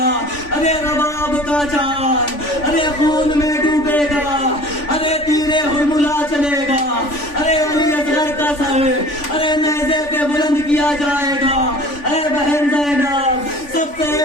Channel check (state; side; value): late; right; 3.5 ms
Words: ارے رباب کا چاند ارے خون میں ڈوبے گا، ارے تیرے ہرملا چلے گا، ارے علی اصغر کا سر ارے نیزے پہ بلند کیا جائے گا. اے بہن زینب سب سے